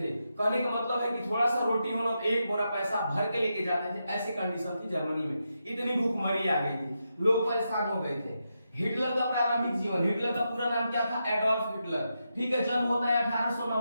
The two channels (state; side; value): inverted; both; correlation -0.86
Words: कहने का मतलब है कि थोड़ा सा रोटी हो तो एक बोरा पैसा भर के लेके जाते थे। ऐसी कंडीशन थी जर्मनी में, इतनी भूखमरी आ गई थी, लोग परेशान हो गए थे। हिटलर का प्रारंभिक जीवन। हिटलर का पूरा नाम क्या था? Adolf Hitler. ठीक है। जन्म होता है